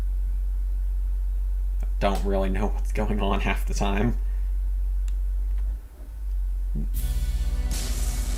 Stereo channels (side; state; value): both; identical; correlation 1.00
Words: I don't really know what's going on half the time.